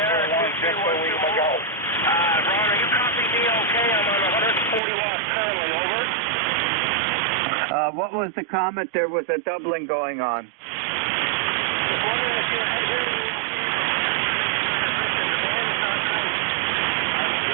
231 Golf. Ron, are you copying me okay? I'm on 140 watts currently, over. What was the comment? There was a doubling going on.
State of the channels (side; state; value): left; drops out; at 4.8 s